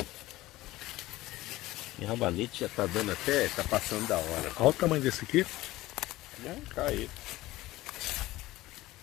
E rabanete já tá dando até, tá passando da hora. Olha o tamanho desse aqui. Já caiu.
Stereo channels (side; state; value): right; quieter; 17.5 dB